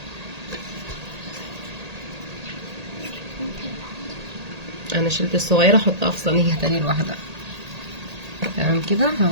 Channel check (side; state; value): left; late; 1.8 ms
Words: انا شلت الصغيره احطها في صينيه تاني لوحدها. تمام كده.